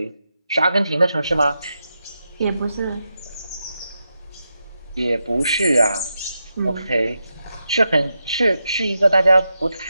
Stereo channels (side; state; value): both; inverted; correlation -0.87